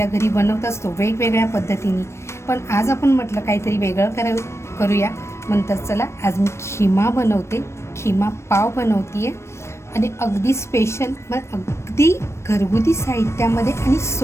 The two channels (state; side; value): late; right; 0.13 ms